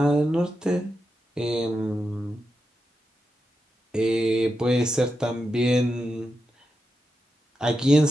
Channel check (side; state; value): both; normal; correlation 0.88